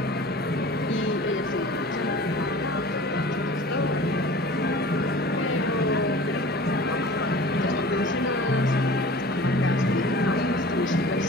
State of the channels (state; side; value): normal; both; correlation 0.41